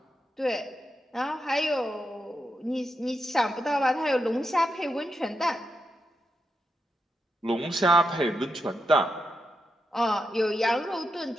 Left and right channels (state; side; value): normal; both; correlation 0.85